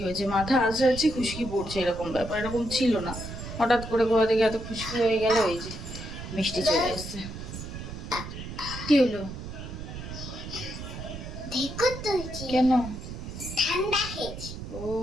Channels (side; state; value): right; noise; rumble, 9 dB below the sound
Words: হয়েছে, মাথা আসে আছে খুশকি পড়ছে, এরকম ব্যাপার এরকম ছিল না, হঠাৎ করে কোথা থেকে এত খুশকি হয়ে গেল। এই যে মিষ্টি চলে এসছে, কি হলো কেন? ঠান্ডা খেয়েছি। ও